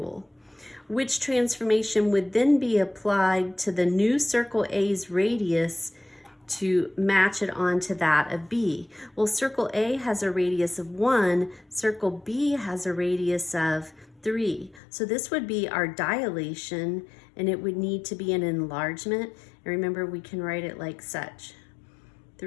Which transformation would then be applied to the new circle A's radius to match it onto that of B? Well, circle A has a radius of 1, circle B has a radius of 3. So this would be our dilation, and it would need to be an enlargement. And remember, we can write it like such.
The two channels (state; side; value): drops out; right; at 14.8 s